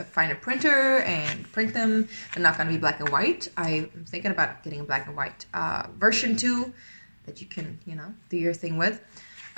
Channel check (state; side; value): inverted; both; correlation -1.00